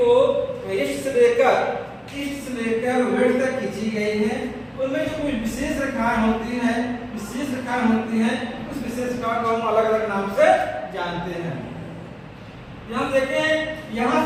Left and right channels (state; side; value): identical; both; correlation 1.00